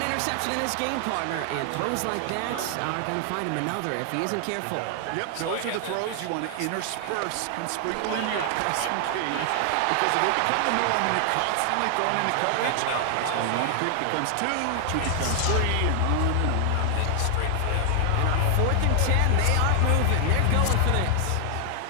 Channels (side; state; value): both; different; correlation 0.00